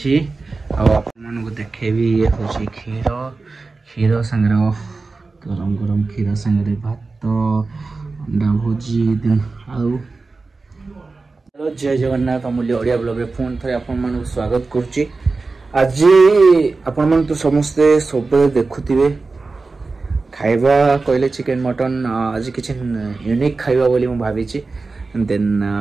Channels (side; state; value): left; quieter; 3.8 dB